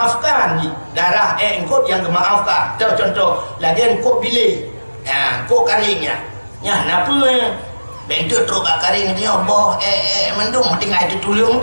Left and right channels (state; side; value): inverted; both; correlation -1.00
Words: darah engkot yang gemaafkan contoh lagi engkot bilik kok karingnya ya napa bentuk teruk karing dia boh mendung tinggal itu tulung